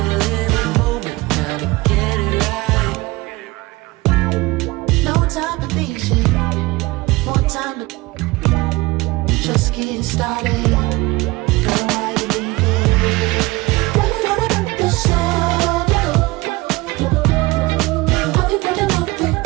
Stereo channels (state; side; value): quieter; left; 21.8 dB